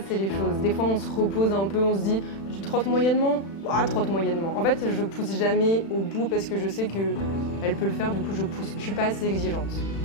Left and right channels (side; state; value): right; late; 36 ms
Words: les choses. Des fois, on se repose un peu, on se dit « tu trottes moyennement ?» Ah, trotte moyennement. En fait, je pousse jamais au bout parce que je sais qu'elle peut le faire, du coup, je pousse. Je suis pas assez exigeante.